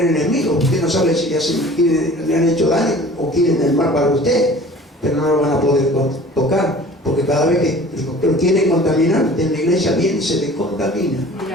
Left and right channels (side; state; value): both; normal; correlation 0.45